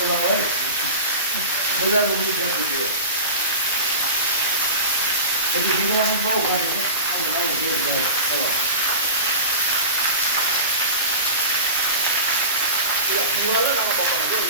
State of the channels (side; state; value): both; inverted; correlation -0.33